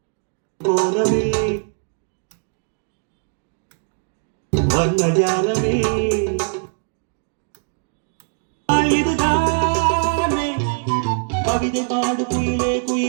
கோலமே வர்ணஜாலமே, இதுதானே கவிதை பாடு குயிலே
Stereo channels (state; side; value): silent; left; digital silence